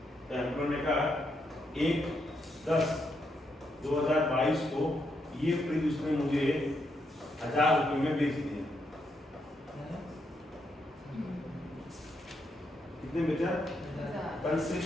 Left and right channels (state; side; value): normal; both; correlation 0.79